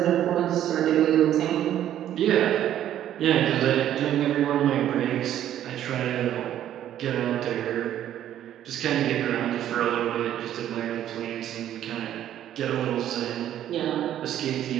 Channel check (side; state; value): left; quieter; 11.4 dB